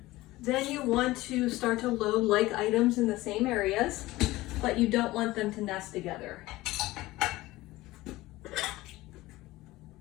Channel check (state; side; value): quieter; right; 18.4 dB